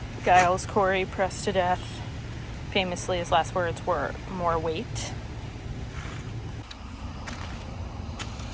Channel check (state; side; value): identical; both; correlation 1.00